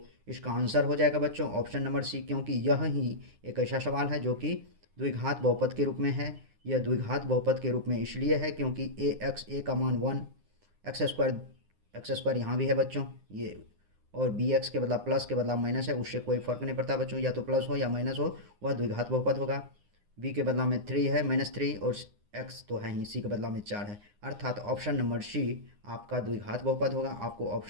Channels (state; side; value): late; left; 9.7 ms